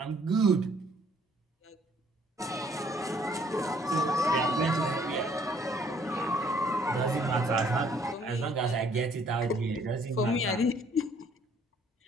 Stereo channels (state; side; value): normal; both; correlation 0.63